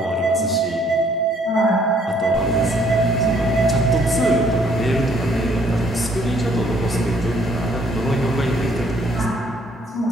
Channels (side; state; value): both; normal; correlation 0.64